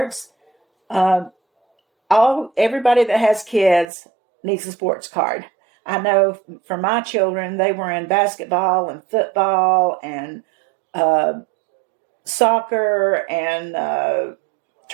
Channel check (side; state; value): left; drops out; at 3.9 s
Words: everybody that has kids needs a sports card. I know for my children, they were in basketball and football and soccer and